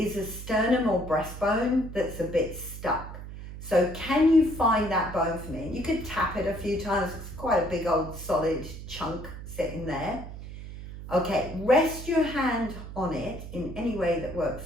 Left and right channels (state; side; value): noise; right; hum, 11 dB below the sound